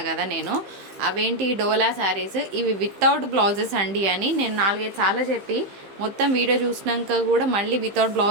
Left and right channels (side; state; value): left; late; 15 ms